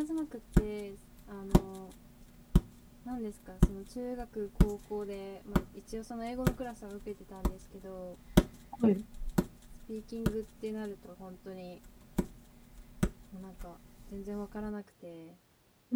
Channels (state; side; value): identical; both; correlation 1.00